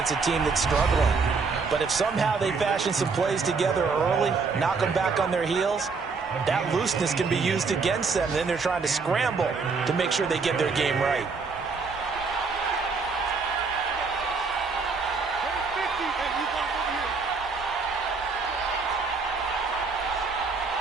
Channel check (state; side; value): quieter; left; 4.7 dB